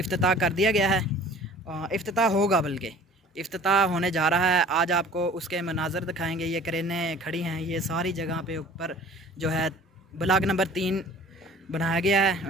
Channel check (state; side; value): normal; both; correlation 0.48